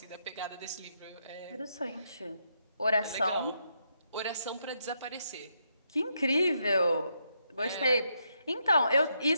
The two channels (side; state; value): both; inverted; correlation -0.79